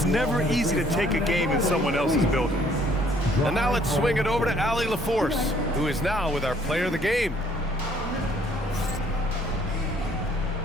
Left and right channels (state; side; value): normal; both; correlation 0.61